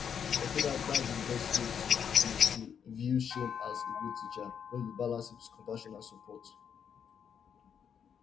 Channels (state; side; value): quieter; right; 7.7 dB